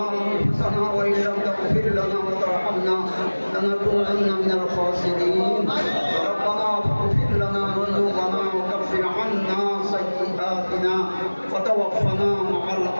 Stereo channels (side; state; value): both; inverted; correlation -1.00